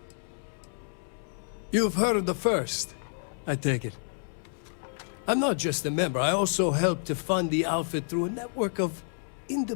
You've heard of the First, I take it. I'm not just a member, I also help to fund the outfit through a network of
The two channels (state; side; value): silent; right; 58 dB below the other